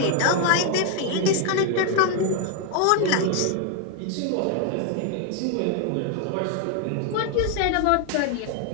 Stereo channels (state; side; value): different; both; correlation 0.01